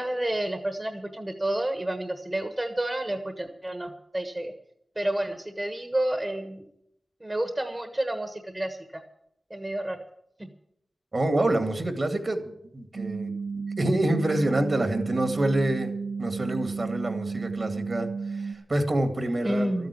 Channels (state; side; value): normal; both; correlation 0.96